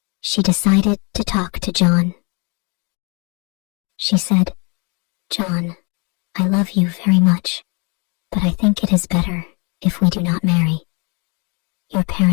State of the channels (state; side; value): quieter; right; 31.9 dB